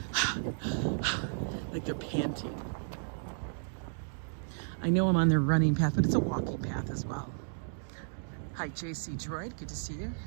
like they're panting. I know I'm on their running path, but it's a walking path as well. Hi, JC Droid, good to see you.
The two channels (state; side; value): silent; left; digital silence